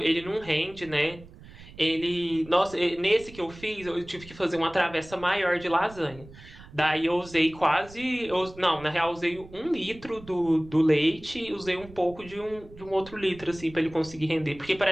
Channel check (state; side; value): noise; right; rumble, 19 dB below the sound